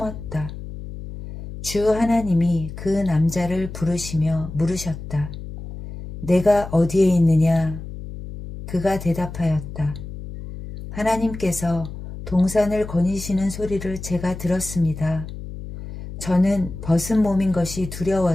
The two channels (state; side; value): noise; left; hum, 10 dB below the sound